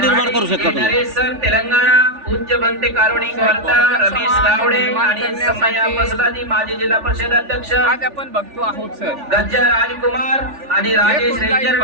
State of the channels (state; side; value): late; left; 3.4 ms